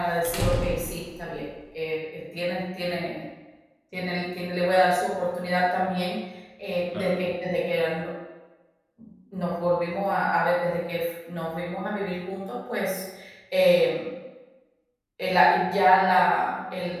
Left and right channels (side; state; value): both; identical; correlation 1.00